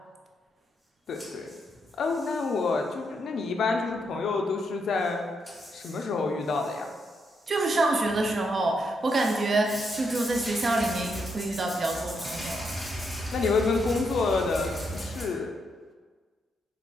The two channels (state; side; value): normal; both; correlation 0.79